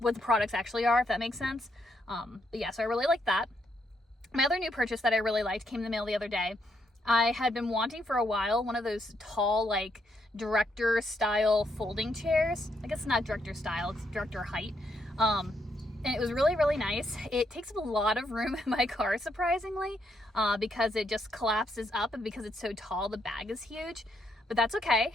the products actually are, if that makes sense. But yeah, so I really like that. My other new purchase that I really liked came in the mail the other day. I had been wanting for a while one of those tall, like, director style folding chairs. I guess it's not director style, it's director height. And it was really nice. It takes up a lot of room in my car, surprisingly, because it just collapses up, and because it's so tall, the bag is huge. But that's okay.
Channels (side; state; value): both; normal; correlation 0.76